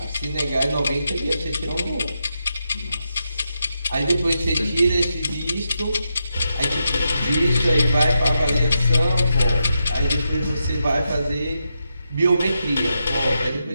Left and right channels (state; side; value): inverted; both; correlation -0.85